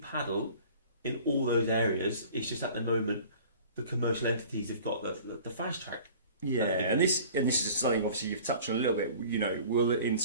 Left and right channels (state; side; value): inverted; both; correlation -0.46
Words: in all those areas. It's just at the moment the commercial entities have got the fast track. Yeah, and this is something obviously you've touched on a little bit. You know, will in